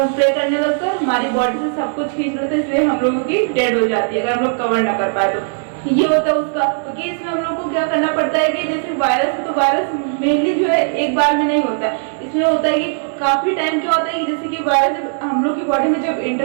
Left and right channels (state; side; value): silent; left; 64 dB below the other